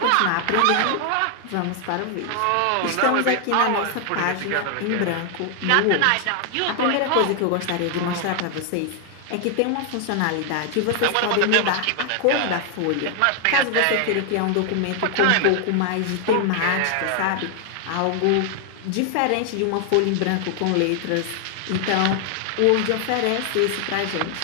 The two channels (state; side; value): different; both; correlation 0.00